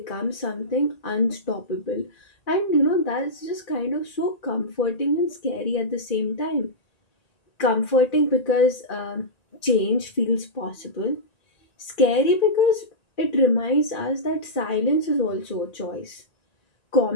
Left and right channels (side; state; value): right; late; 1.9 ms